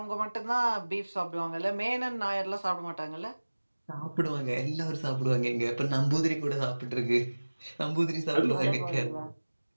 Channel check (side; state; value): both; inverted; correlation -1.00